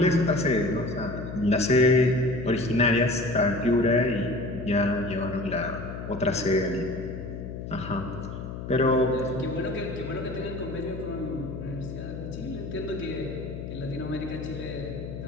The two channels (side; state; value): left; noise; hum, 8 dB below the sound